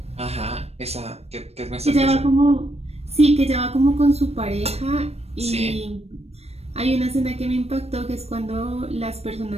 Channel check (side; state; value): left; late; 0.30 ms